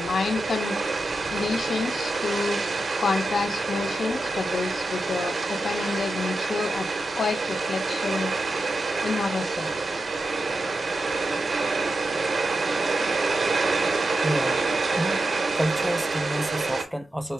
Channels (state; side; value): normal; both; correlation 0.89